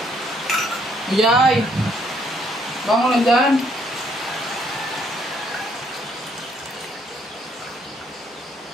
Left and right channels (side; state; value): both; normal; correlation 0.68